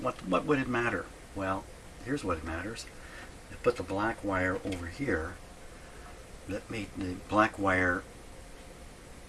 would it matter? Well, here's what it matters. I put the black wire over here. That made the black wire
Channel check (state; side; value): identical; both; correlation 1.00